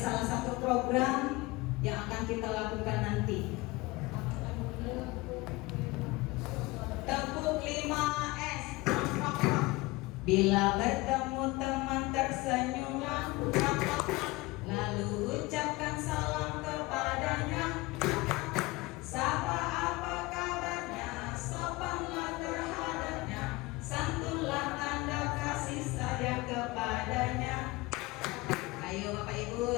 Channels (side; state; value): right; quieter; 22.1 dB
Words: satu program yang akan kita lakukan nanti. Tepuk 5S. Bila bertemu teman tersenyumlah, lalu ucapkan salam kepadanya. Sapa apa kabarnya, sopanlah terhadapnya, santunlah tanda kasih sayang kepadanya. Ayo Bapak